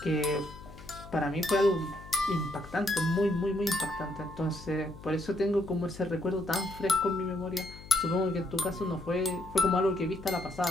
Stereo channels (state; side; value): noise; left; hum, 17 dB below the sound